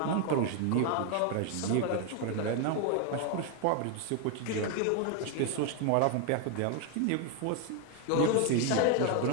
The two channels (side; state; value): both; different; correlation 0.01